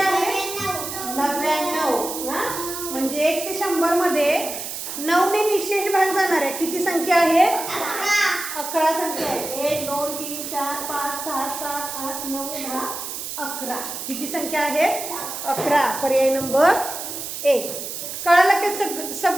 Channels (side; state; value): right; noise; hiss, 7 dB below the sound